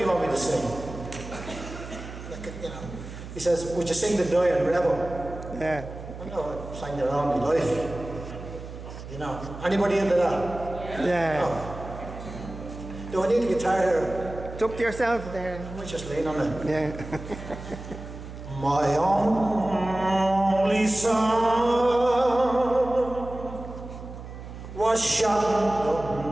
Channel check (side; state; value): right; noise; hum, 12 dB below the sound